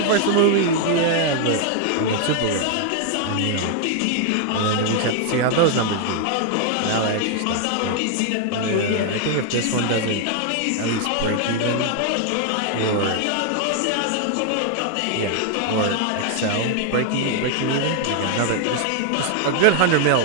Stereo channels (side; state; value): both; different; correlation 0.00